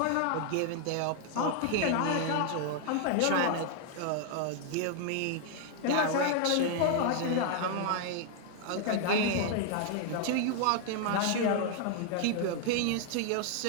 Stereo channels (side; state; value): both; different; correlation 0.00